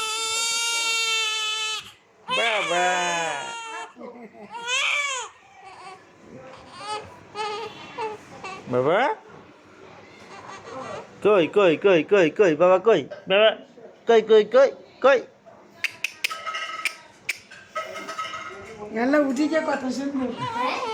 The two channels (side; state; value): both; identical; correlation 1.00